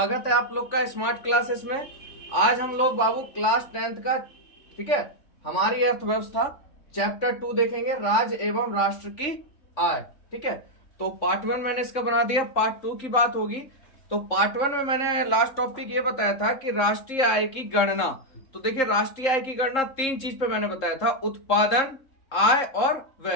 है आप लोग का स्मार्ट क्लासेस में। आज हम लोग बाबू क्लास 10th का, ठीक है, हमारी अर्थव्यवस्था चैप्टर 2 देखेंगे, राज्य एवं राष्ट्र की आय। ठीक है, तो पार्ट 1 मैंने इसका बना दिया, पार्ट 2 की बात होगी। तो पार्ट 1 में मैंने लास्ट टॉपिक ये बताया था कि राष्ट्रीय आय की गणना। तो देखिए, राष्ट्रीय आय की गणना 3 चीज पे मैंने बताया था, उत्पादन, आय और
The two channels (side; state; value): right; late; 3.7 ms